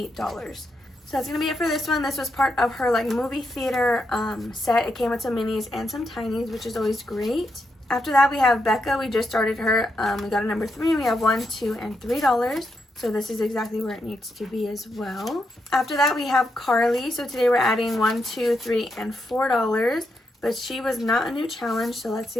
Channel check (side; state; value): both; normal; correlation 0.82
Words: So that's gonna be it for this one. This was part of her like movie theater set. It came with some minis and some tinies, which is always great. After that, we have Becca. We just started her. We got a number 3, and we have $1, 2, and $3. So this is exactly where it needs to be as well. After that, we have Carly. So today we're adding $1, 2, 3, and $4. But she was not a new challenge, so let's